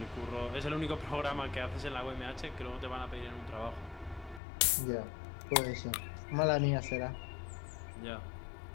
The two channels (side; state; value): right; drops out; at 4.4 s